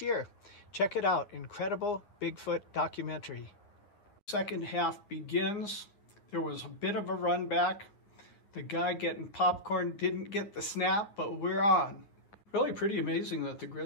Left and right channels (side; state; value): right; late; 9.7 ms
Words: year. Check it out. Incredible Bigfoot documentary. Second half begins. There was a bit of a run back. The guy getting popcorn didn't get the snap, but we're on. Really pretty amazing that the